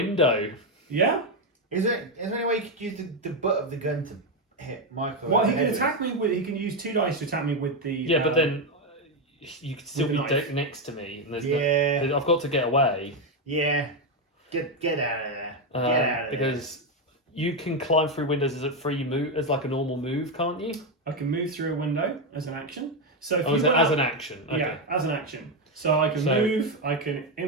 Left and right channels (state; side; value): normal; both; correlation 0.07